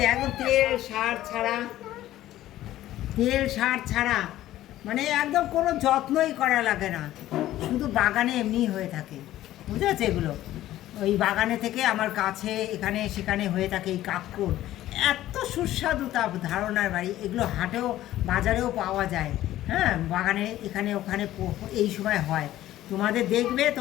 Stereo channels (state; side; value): quieter; right; 14.2 dB